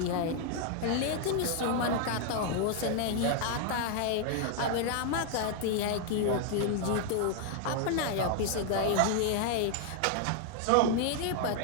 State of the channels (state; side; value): different; both; correlation 0.00